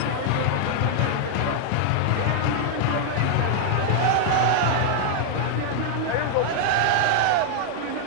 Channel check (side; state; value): both; different; correlation -0.01